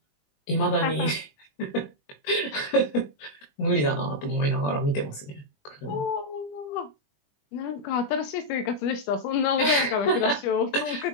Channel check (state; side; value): late; right; 20 ms